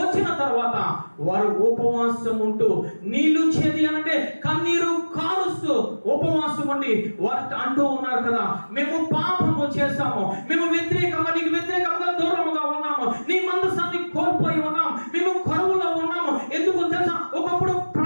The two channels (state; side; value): inverted; both; correlation -1.00